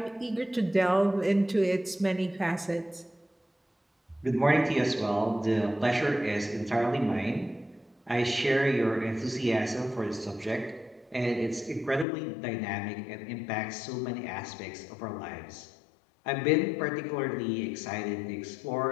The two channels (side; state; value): right; drops out; at 12.1 s